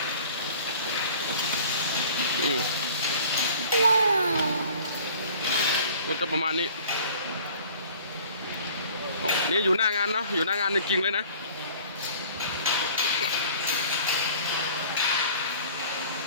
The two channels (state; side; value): inverted; both; correlation -0.48